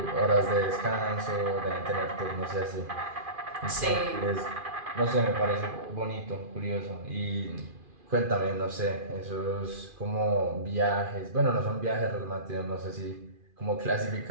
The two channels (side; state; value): left; late; 2.4 ms